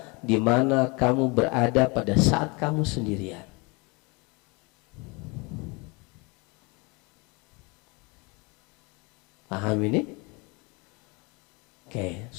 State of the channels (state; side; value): quieter; right; 28.6 dB